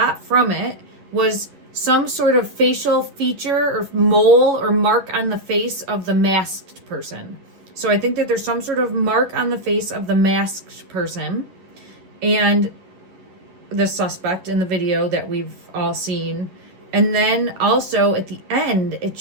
from it was some sort of facial feature or mole or mark on the face of the masked person. So I think that there's some sort of mark on the face of the masked person and the suspect in the video that we've all seen. And then also at the end, it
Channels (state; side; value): late; left; 11 ms